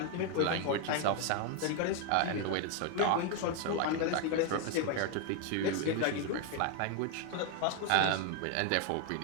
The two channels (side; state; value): both; different; correlation 0.01